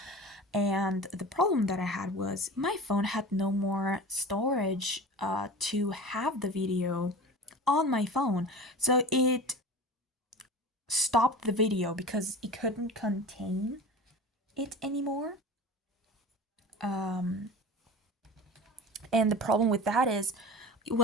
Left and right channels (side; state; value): both; normal; correlation 0.35